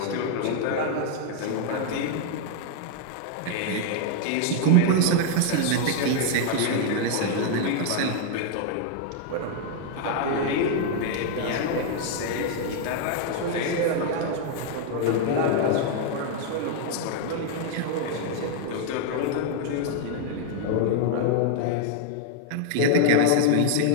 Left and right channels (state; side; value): different; both; correlation 0.00